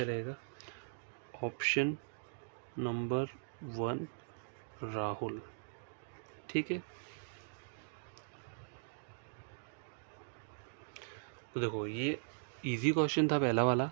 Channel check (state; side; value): silent; left; digital silence